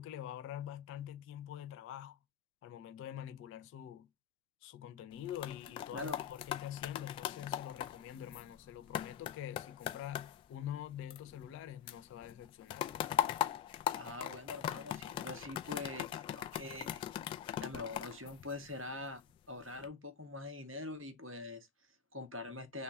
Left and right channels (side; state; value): right; quieter; 8.3 dB